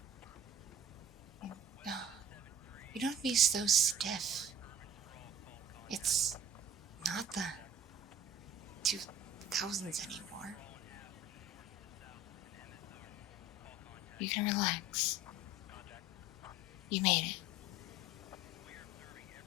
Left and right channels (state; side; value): normal; both; correlation 0.44